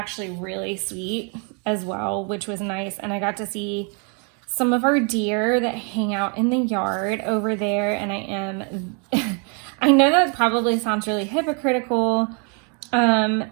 really sweet as well, which was nice. And I got to see some of our deer that hang out in the yard over there. And I know that probably sounds really hypocritical,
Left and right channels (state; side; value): quieter; left; 37.6 dB